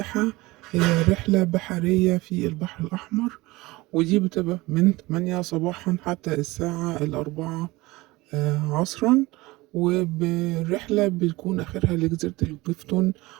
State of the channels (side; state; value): left; quieter; 20.9 dB